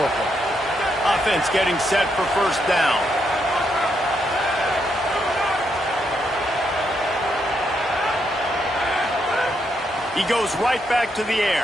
Offense getting set for first down. He goes right back to the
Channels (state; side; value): normal; both; correlation 0.78